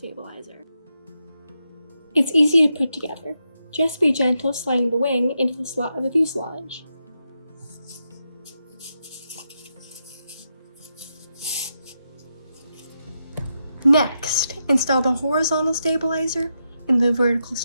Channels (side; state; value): both; inverted; correlation -0.85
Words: It's easy to put together. Just be gentle sliding the wing into the slot of the fuselage. Next, install the horizontal stabilizer and the vertical